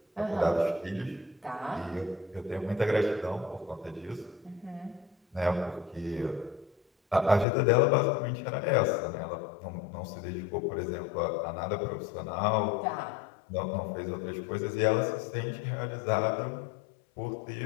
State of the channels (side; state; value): right; drops out; at 7.5 s